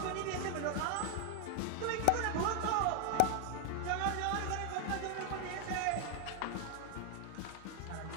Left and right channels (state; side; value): different; both; correlation 0.00